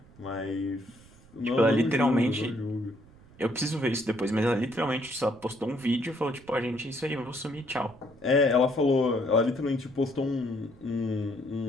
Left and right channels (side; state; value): right; noise; rumble, 24 dB below the sound